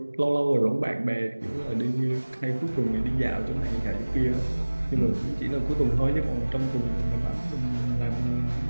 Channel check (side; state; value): both; inverted; correlation -1.00